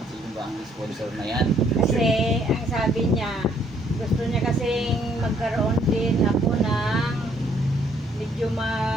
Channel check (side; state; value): both; normal; correlation 0.66